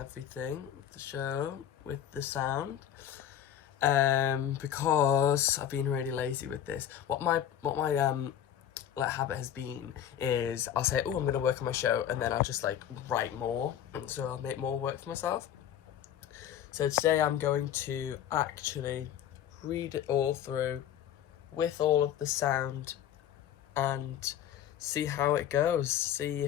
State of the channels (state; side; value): quieter; right; 10.3 dB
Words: the show, with the sound. Because I've been really lazy with this. What my habit has been is I'll say, oh, I'm gonna work on my show, and then I'll just like write more, and so I'll make more work for myself. So today I'm going to actually read it all through with all of the sound and see how it goes, see